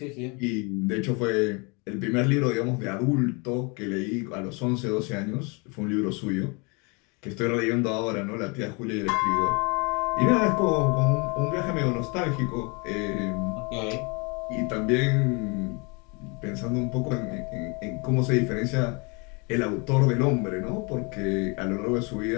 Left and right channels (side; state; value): right; quieter; 30.8 dB